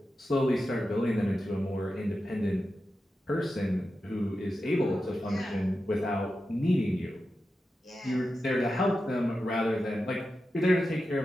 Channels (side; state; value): both; normal; correlation 0.91